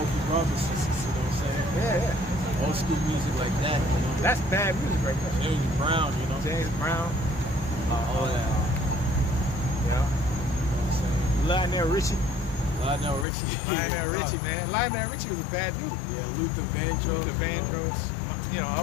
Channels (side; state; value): right; drops out; at 13.2 s